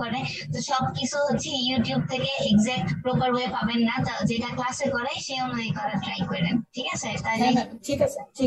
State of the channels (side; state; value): both; identical; correlation 1.00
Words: করে। তো সবকিছু হচ্ছে ইউটিউব থেকে এক্সাক্ট প্রপার ওয়ে পাবেন না, যেটা ক্লাসে করে সেই অনুযায়ী করার ট্রাই করেন, ঠিক আছে? তাহলে হ্যাঁ ম্যাম, ঠিক আছে